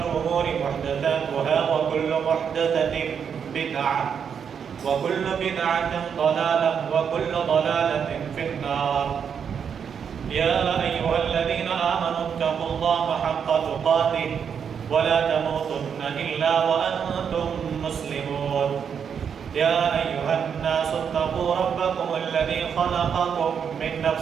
الأمور محدثاتها وكل محدثة بدعة وكل بدعة ضلالة وكل ضلالة في النار. يا أيها الذين آمنوا اتقوا الله حق تقاته ولا تموتن إلا وأنتم مسلمون. يا أيها الناس اتقوا ربكم الذي خلقكم من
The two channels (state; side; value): quieter; left; 7.3 dB